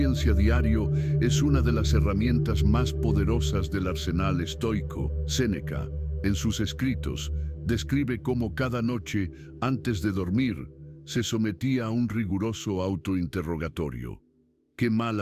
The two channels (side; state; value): both; identical; correlation 1.00